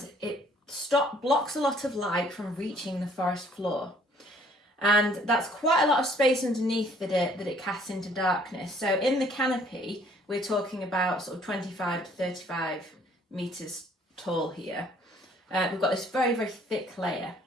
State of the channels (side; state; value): both; normal; correlation 0.60